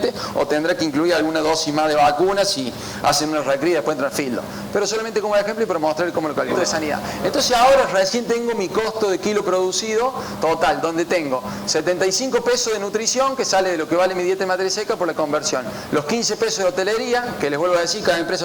o tendrá que incluir alguna dosis más de vacunas si hacen una recría y después entran filo. Pero solamente como ejemplo y para mostrar cómo lo calculo de sanidad. Entonces ahora recién tengo mi costo de kilo producido total, donde tengo 75 pesos de nutrición, que sale de lo que vale mi dieta de materia seca por la conversión, los 15 pesos de hotelería, que les vuelvo a decir, cada empresa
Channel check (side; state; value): both; identical; correlation 1.00